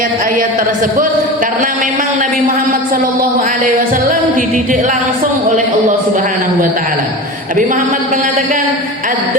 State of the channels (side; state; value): both; normal; correlation 0.29